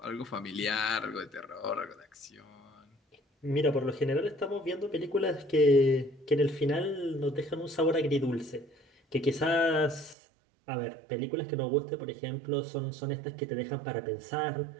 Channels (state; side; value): drops out; left; at 10.2 s